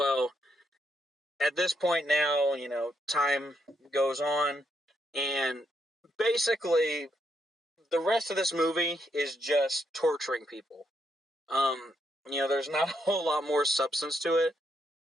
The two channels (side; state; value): both; normal; correlation 0.77